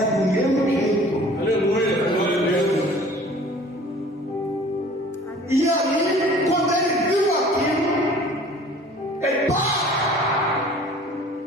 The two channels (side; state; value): both; normal; correlation 0.49